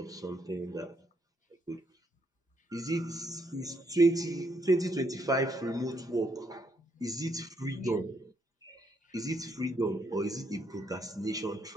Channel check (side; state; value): both; normal; correlation 0.74